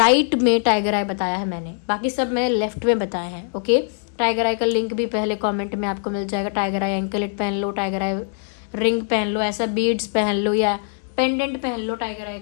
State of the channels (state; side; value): silent; right; 64 dB below the other